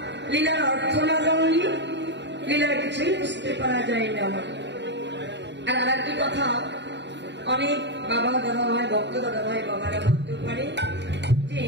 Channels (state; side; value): late; left; 0.52 ms